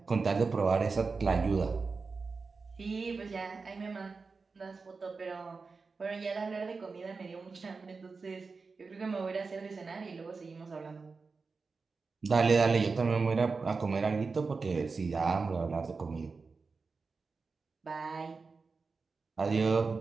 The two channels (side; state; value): left; quieter; 4.5 dB